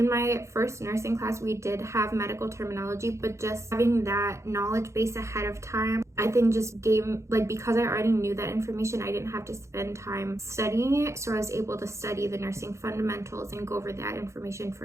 my first nursing class, we did have medical terminology, but just having that knowledge base ahead of time, I think just gave, like, because I already knew that information, I didn't have to spend time studying it, so I was able to study the nursing fundamentals and go over that information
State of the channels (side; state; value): left; late; 0.14 ms